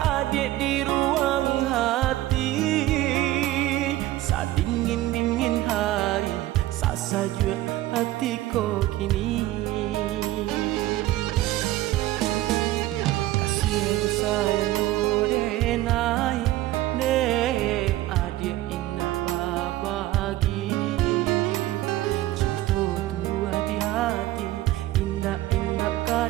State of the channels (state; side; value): quieter; left; 15.8 dB